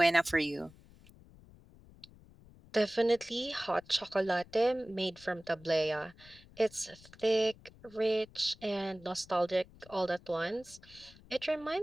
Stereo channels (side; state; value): left; noise; rumble, 23 dB below the sound